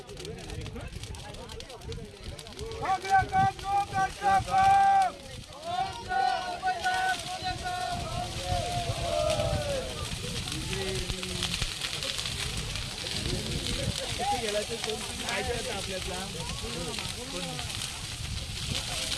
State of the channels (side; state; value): both; identical; correlation 1.00